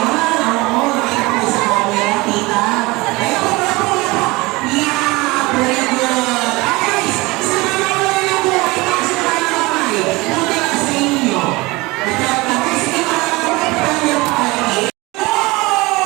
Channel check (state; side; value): quieter; left; 22.7 dB